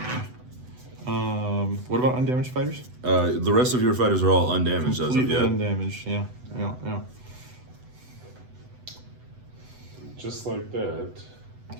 What about undamaged fighters? The rest of your fighters are all undamaged as of Completely yet. undamaged. Yeah. Just like that.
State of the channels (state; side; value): late; left; 8.0 ms